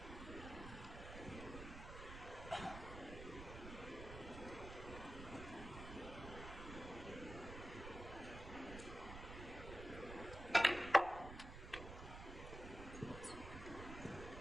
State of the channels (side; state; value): right; noise; rumble, 10 dB below the sound